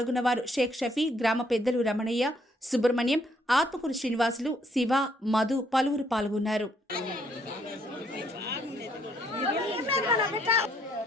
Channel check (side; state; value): both; normal; correlation 0.69